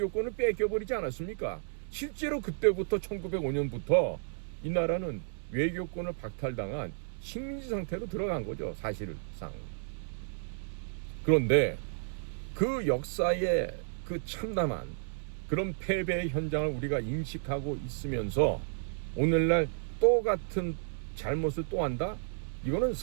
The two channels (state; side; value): silent; left; 56 dB below the other